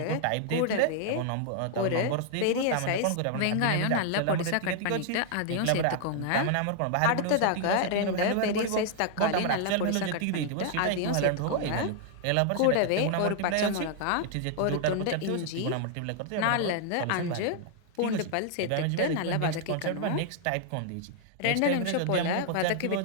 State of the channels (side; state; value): both; different; correlation 0.00